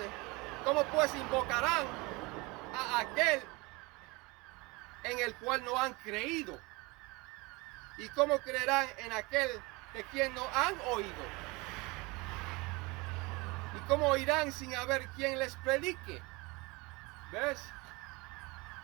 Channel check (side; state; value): left; quieter; 25.3 dB